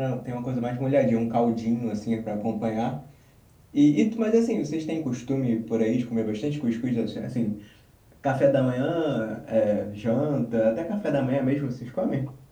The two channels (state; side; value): identical; both; correlation 1.00